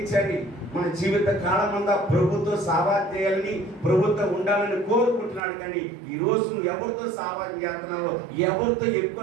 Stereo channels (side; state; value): left; drops out; at 5.4 s